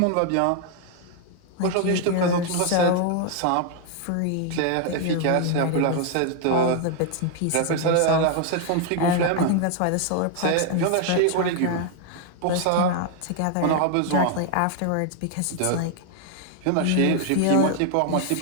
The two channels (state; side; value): different; both; correlation 0.00